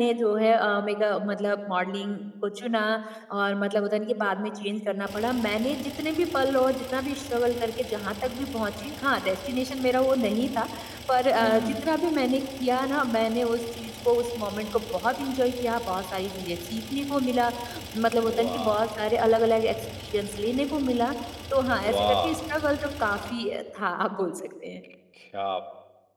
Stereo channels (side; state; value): both; identical; correlation 1.00